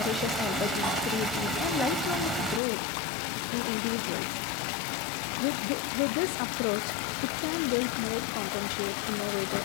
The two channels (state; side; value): drops out; right; at 2.6 s